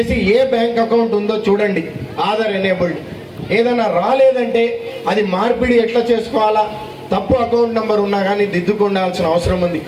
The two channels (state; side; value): identical; both; correlation 1.00